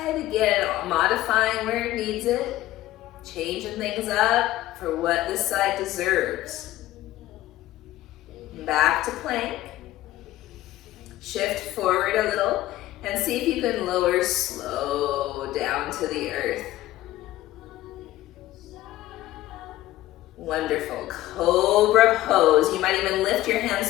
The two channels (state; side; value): quieter; right; 15.4 dB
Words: Again, modifying where it needs it. Changing things up for what this side deserves. Back to plank. Shift forward a little and see if you can lower slow down to the earth. Wonderful. Cobra pose. You might even lift your hands,